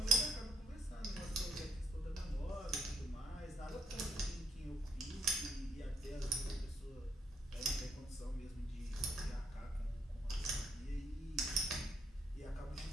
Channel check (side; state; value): both; normal; correlation 0.73